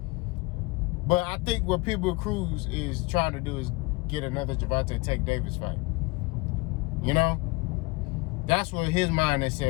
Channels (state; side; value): quieter; right; 24.1 dB